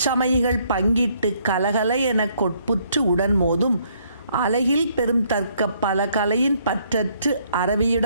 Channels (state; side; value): inverted; both; correlation -0.68